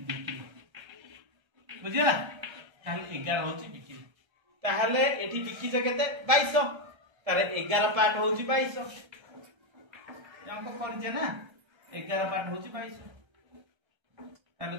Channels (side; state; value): left; late; 1.3 ms